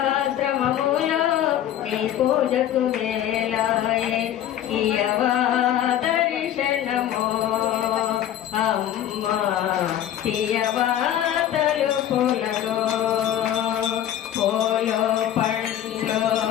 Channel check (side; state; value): right; quieter; 11.2 dB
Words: శ్రమములో నీ పూజకు వేలాయే ఇయవా దర్శనము అమ్మా తీయవా తలుపులను పూలు పండ్లు